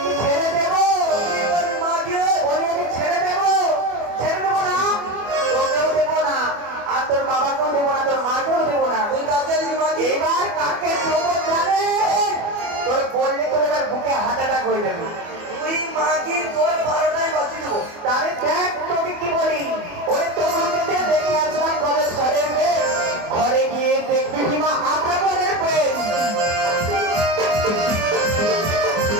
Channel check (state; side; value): late; left; 24 ms